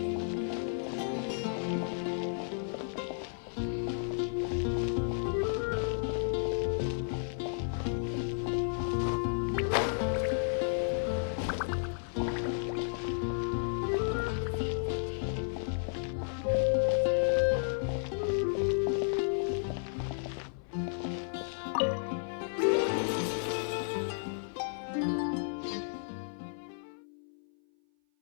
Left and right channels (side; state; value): right; silent; 55 dB below the other